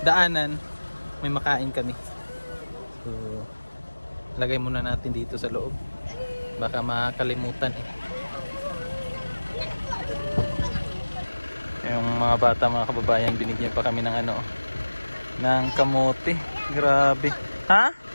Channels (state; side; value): inverted; both; correlation -1.00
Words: daanan, may makain kami. So lagay muna natin dito sa loob. Baka makalimutan eh. Yung mga bata, mga kababayan, binigyan pa kami ng ano, ng kamote. Grabe. Ha?